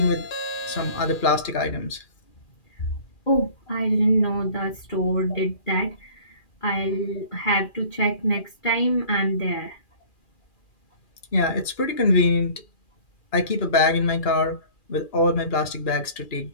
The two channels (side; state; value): right; late; 2.4 ms